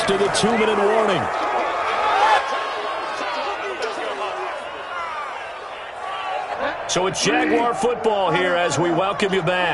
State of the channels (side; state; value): both; identical; correlation 1.00